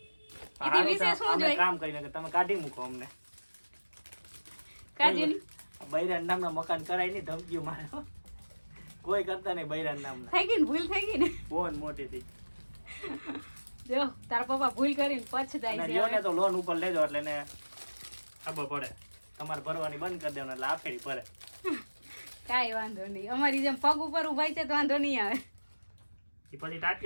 એથી વિશેષ શું અમે જોઈએ? કામ કરીને કે તમે કાઢી મૂકો અમને. કાજુની બૈરાન નામના મકાન કરાય નહીં, ધમકીઓ મારે હો. કોઈ કરતા નહીં બૈરાન નામના. થઈ ગઈ ને ભૂલ થઈ ગઈ ને. ફોન મોટી થઈ. જો તારા પપ્પા ભૂલ કરીને પછતાય અને છે લ્યો ને હવે. તો લોન ઉપર લેજો એટલે એને ખબર પડે. તમારે ભરવાની બંધ કરી દેવાનું એટલે આફેડી ભરે. કાંઈ વાંધો નહીં, અમારી જેમ પગ ઉપર ઉભાઈ છે તો વાંધો નહીં આવે. એ પછી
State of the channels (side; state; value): both; inverted; correlation -1.00